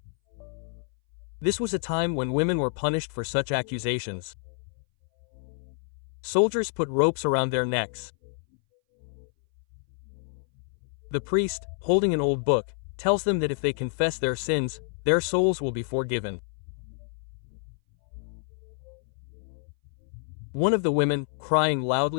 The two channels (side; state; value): right; silent; 59 dB below the other